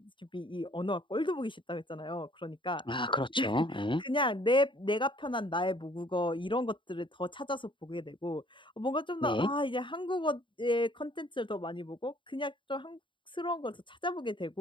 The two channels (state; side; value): late; right; 0.24 ms